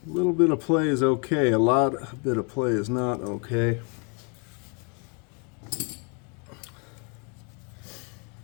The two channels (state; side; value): quieter; right; 35.5 dB